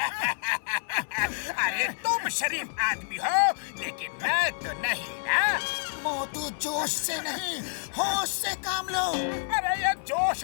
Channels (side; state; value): right; silent; 59 dB below the other